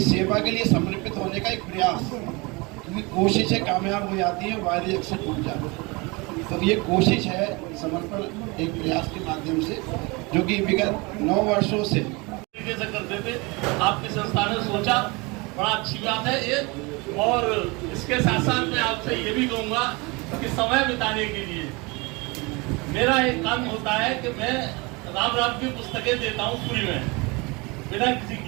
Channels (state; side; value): quieter; left; 26.6 dB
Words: सेवा के लिए समर्पित होने का एक प्रयास, क्योंकि कोशिशें कामयाब हो जाती हैं, वायदे अक्सर टूट जाते हैं। तो ये कोशिश है समर्पण एक प्रयास के माध्यम से, जो कि विगत 9 वर्षों से करते थे। आपकी संस्था ने सोचा, बड़ा अच्छी बात है ये। और इसके साथ साथ मैं आपसे ये भी कहूँगा कि समय बिताने के लिए मेरा एक काम होता है कि मैं राम राम की पुस्तकें देता हूँ फ्री में, बिना किसी